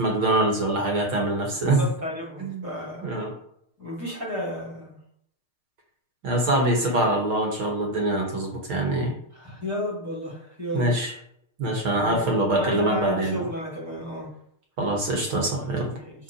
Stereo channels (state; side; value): late; left; 6.5 ms